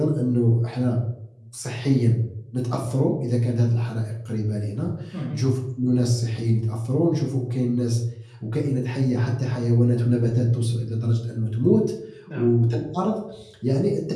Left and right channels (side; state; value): both; identical; correlation 1.00